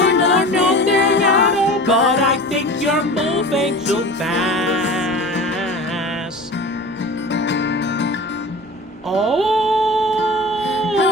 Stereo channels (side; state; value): both; normal; correlation 0.35